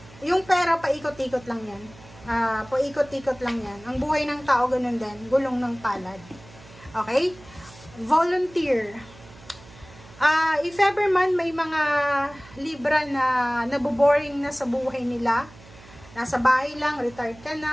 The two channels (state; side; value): noise; right; hum, 22 dB below the sound